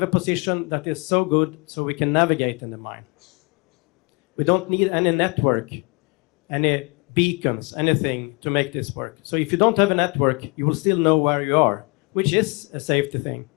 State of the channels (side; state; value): right; quieter; 31.4 dB